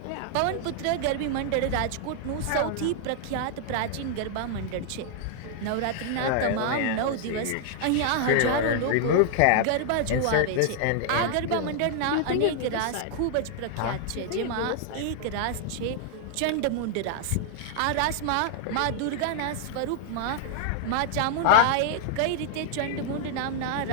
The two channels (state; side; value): different; both; correlation 0.00